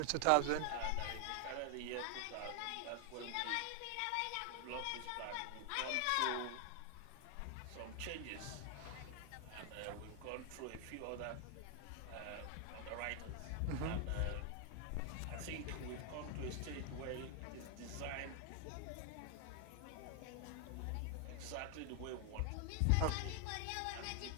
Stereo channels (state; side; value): different; both; correlation 0.00